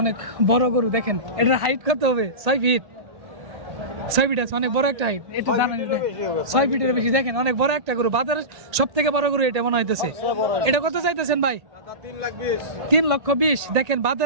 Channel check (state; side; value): late; left; 1.8 ms